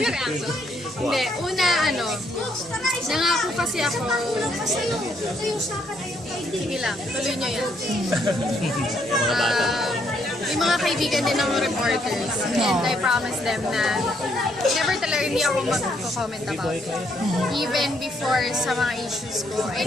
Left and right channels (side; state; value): both; normal; correlation 0.72